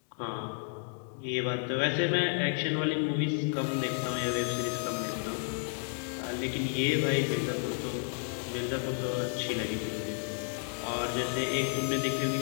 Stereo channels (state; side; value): silent; right; 57 dB below the other